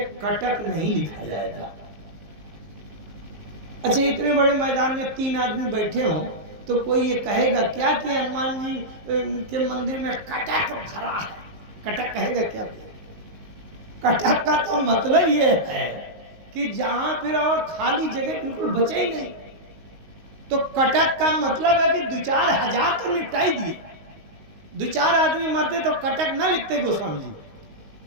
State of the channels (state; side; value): late; left; 19 ms